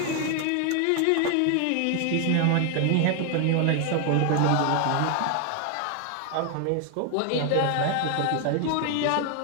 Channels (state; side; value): different; both; correlation 0.00